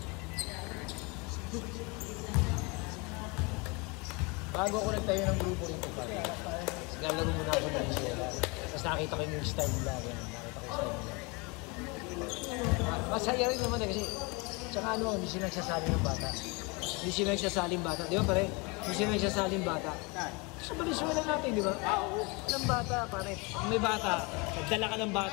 Bago ako nagtayo ng grupo nito pare. Naglalaro muna ako ng Venezuela. Tapos nakita ko yung style nila. Nakita ko yung style nila. Masaya rin naman eh kasi tsaka ano, hindi sila nagsasaling ng bata. Hindi sila nagsasaling bata. Di ba pare? Hindi sila nagsasaling bata. Sa Venezuela natin, di ba? Walang bata pare. Kung may bata, nagdala ka ng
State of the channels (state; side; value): quieter; right; 28.7 dB